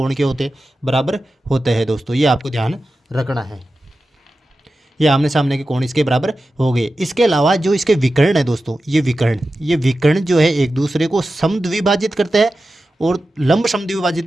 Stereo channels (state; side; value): normal; both; correlation 0.93